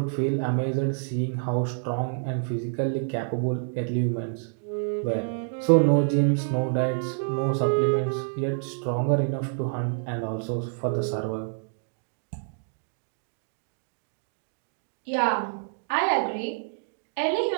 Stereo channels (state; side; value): silent; left; digital silence